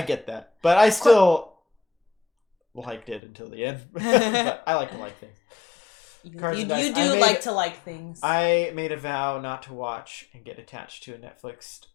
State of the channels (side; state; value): right; drops out; at 3.2 s